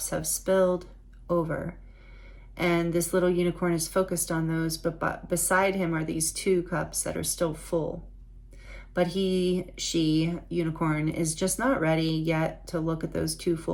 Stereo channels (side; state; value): both; identical; correlation 1.00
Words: have spilled over, and this little unicorn is focused on those, but beside him are these 2 cups that are still full. But she, unicorn, is just not ready yet to look at those 2